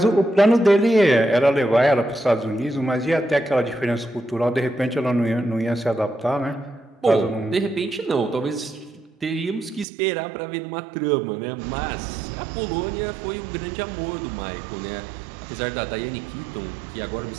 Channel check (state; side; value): drops out; left; at 9.9 s